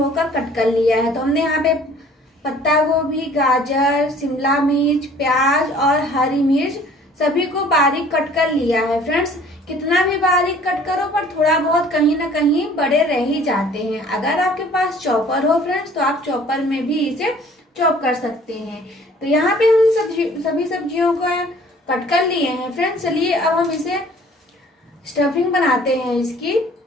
कट कर लिया है। तो हमने यहाँ पे पत्ता गोभी, गाजर, शिमला मिर्च, प्याज और हरी मिर्च सभी को बारीक कट कर लिया है। फ्रेंड्स, कितना भी बारीक कट करो पर थोड़ा बहुत कहीं ना कहीं बड़े रह ही जाते हैं। अगर आपके पास चॉपर हो फ्रेंड्स तो आप चॉपर में भी इसे चॉप कर सकते हैं। तो यहाँ पे हम सभी सब्जियों को कट कर लिए हैं। फ्रेंड्स, चलिए अब हम इसे स्टफिंग बनाते हैं इसकी।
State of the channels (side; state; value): both; normal; correlation 0.53